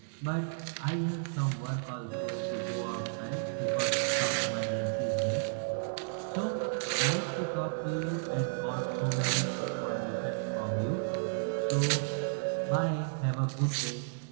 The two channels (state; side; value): silent; left; 56 dB below the other